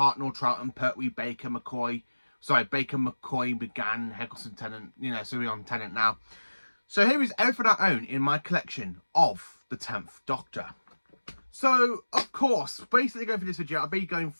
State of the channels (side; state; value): both; inverted; correlation -1.00